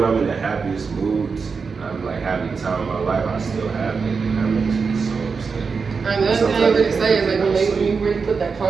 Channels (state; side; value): quieter; left; 5.2 dB